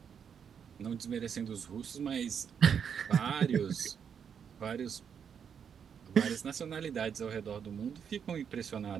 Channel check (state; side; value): quieter; left; 7.5 dB